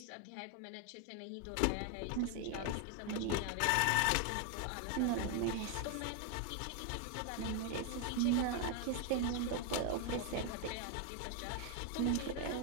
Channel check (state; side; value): different; both; correlation 0.01